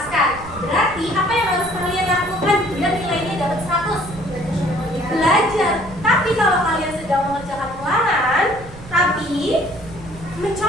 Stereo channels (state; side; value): noise; right; rumble, 16 dB below the sound